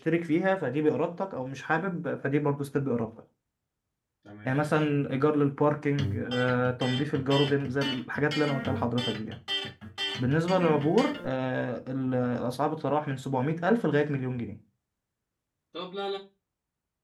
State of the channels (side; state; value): both; identical; correlation 1.00